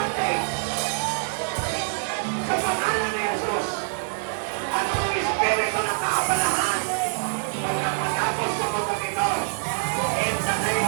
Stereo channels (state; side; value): silent; left; digital silence